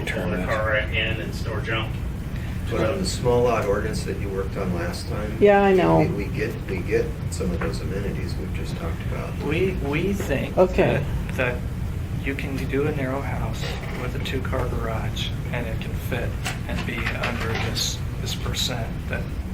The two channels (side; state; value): both; identical; correlation 1.00